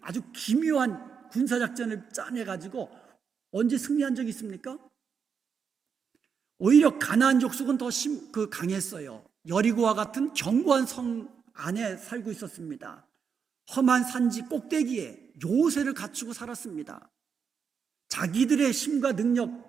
아주 기묘한 군사작전을 짜내가지고 언제 승리한 적이 있습니까? 오히려 가나안 족속은 더 강했어요. 여리고와 같은 견고한 성 안에 살고 있었습니다. 험한 산지 꼭대기에 요새를 갖추고 살았습니다. 자기들의 힘과 능력,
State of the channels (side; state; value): left; quieter; 6.4 dB